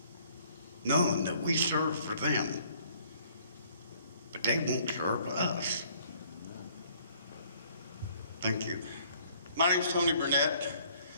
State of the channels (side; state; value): both; inverted; correlation -0.60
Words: knowing that we serve for them, but they won't serve us? Thank you. My name's Tony Burnett,